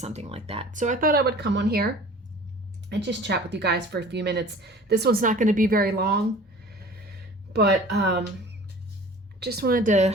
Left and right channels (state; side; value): normal; both; correlation 0.45